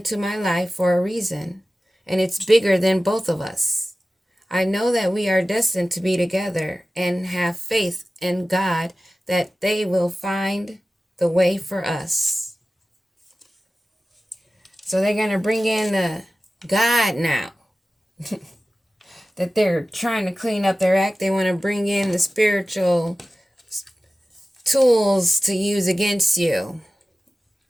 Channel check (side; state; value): both; normal; correlation 0.96